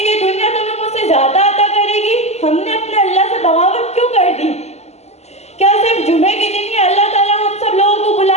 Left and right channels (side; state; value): right; late; 0.32 ms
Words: دنیا تمہیں مجھ سے زیادہ عطا کرے گی؟ ہم نے اپنے اللہ سے بغاوت کیوں کر دی؟ کیا صرف جمعے کے دن ہی اللہ تعالیٰ ہم سب لوگوں کو